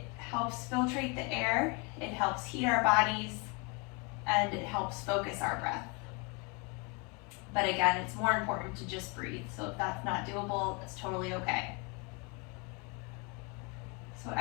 helps filtrate the air, it helps heat our bodies, and it helps focus our breath. But again, it's more important to just breathe. So if that's not doable, it's totally okay. So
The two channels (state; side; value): quieter; right; 30.4 dB